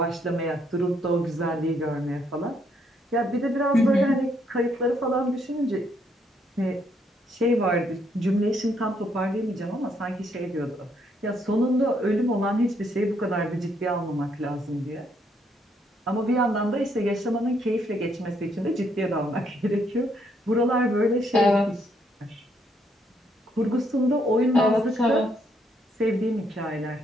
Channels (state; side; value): normal; both; correlation 0.72